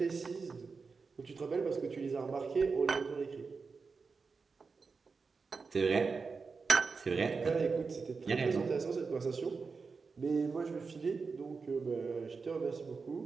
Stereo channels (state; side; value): quieter; left; 4.8 dB